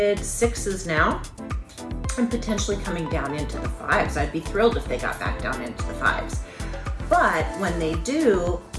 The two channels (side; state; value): both; identical; correlation 1.00